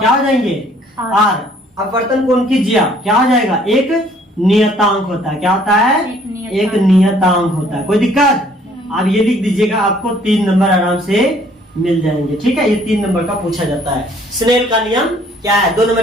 हो जाएंगे, आर। अपवर्तन कोण की जिया क्या हो जाएगा, एक नियतांक होता है। क्या होता है, एक नियतांक होता है। कोई दिक्कत, आप ये लिख दीजिएगा, आपको 3 नंबर आराम से मिल जाएंगे, ठीक है। ये 3 नंबर का पूछा जाता है। स्नेल का नियम क्या है, 2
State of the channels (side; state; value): both; normal; correlation 0.60